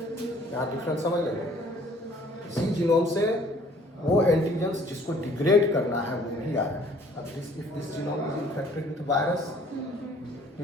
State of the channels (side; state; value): both; normal; correlation 0.57